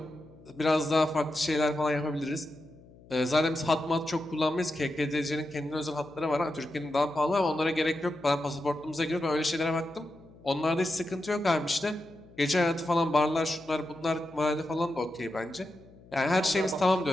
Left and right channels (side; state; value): left; noise; hum, 24 dB below the sound